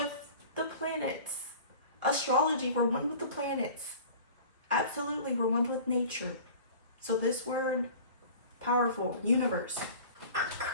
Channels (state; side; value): inverted; both; correlation -0.42